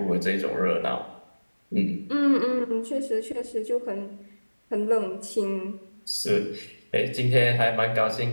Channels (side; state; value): both; inverted; correlation -1.00